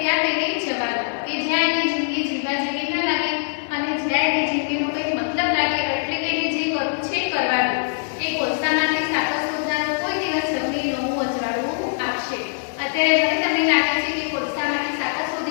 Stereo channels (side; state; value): right; silent; digital silence